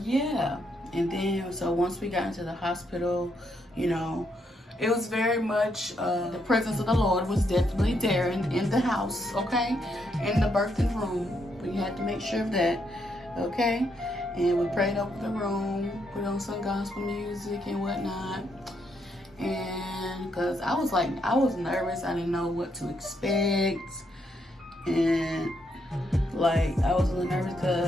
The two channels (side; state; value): both; normal; correlation 0.77